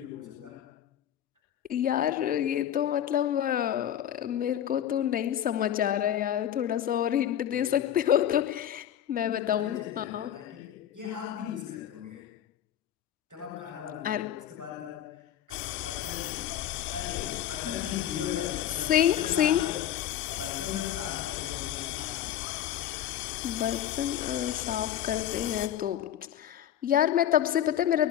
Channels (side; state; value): right; quieter; 10.7 dB